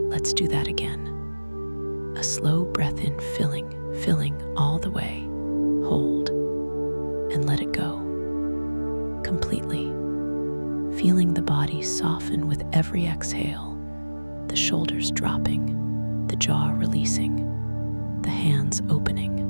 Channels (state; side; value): inverted; both; correlation -1.00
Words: Let's do that again. A slow breath in, filling all the way. Hold, and let it go. Completely. Feeling the body soften with every exhale, the shoulders dropping, the jaw releasing, the hands